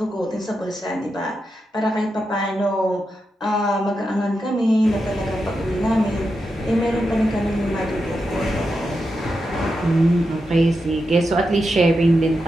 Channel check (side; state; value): both; normal; correlation 0.87